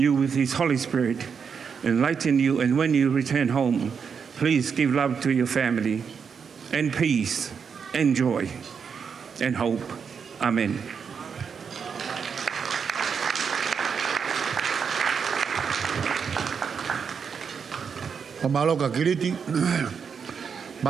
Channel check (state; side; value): quieter; left; 6.4 dB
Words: with His Holy Spirit, enlighten you, and when you return home, please give love to your family, and peace, and joy, and hope. Amen. Pamaloka kiliti,